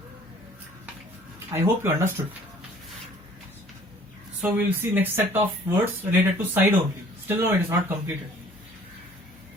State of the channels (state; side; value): normal; both; correlation 0.55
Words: I hope you understood. So we will see next set of words related to side only. Still no, it is not completed.